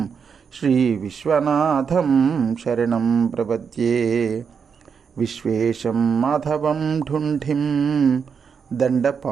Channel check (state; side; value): quieter; left; 6.4 dB